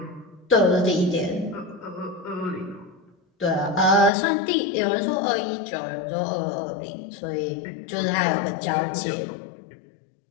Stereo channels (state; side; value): drops out; right; at 4.1 s